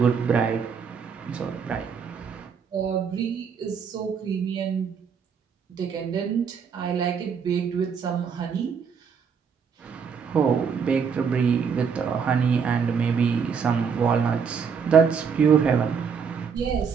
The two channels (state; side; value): quieter; left; 6.4 dB